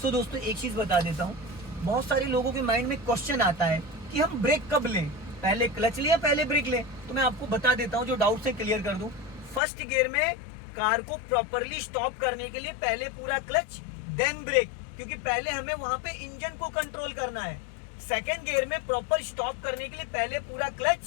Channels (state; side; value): drops out; right; at 9.6 s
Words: सो दोस्तों एक चीज बता देता हूँ, बहुत सारे लोगों के माइंड में क्वेश्चन आता है कि हम ब्रेक कब लें, पहले क्लच लें या पहले ब्रेक लें। तो मैं आपको बता देता हूँ, जो डाउट से क्लियर कर दूं। 1st गियर में कार को प्रॉपरली स्टॉप करने के लिए पहले पूरा क्लच देन ब्रेक, क्योंकि पहले हमें वहां पे इंजन को कंट्रोल करना है। 2nd गियर में प्रॉपर स्टॉप करने के लिए पहले पूरा